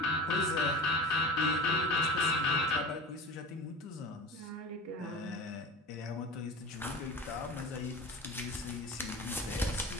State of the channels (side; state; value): both; normal; correlation 0.31